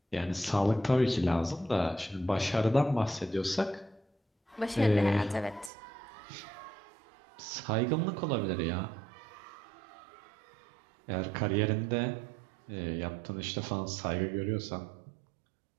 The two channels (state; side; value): drops out; left; at 5.7 s